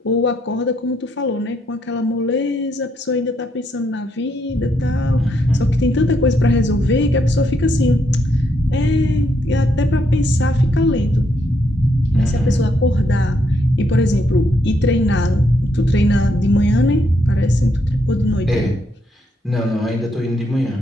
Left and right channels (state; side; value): normal; both; correlation 0.76